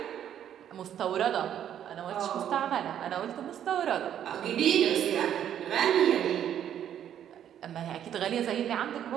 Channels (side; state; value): left; quieter; 10.0 dB